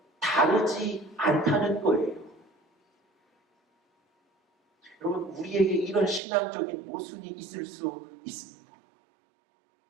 다르지 않다는 거예요. 여러분, 우리에게 이런 신앙적인 모순이 있을 수 있습니다.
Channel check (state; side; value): drops out; left; at 6.2 s